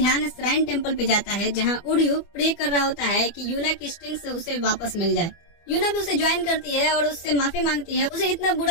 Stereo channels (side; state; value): right; late; 24 ms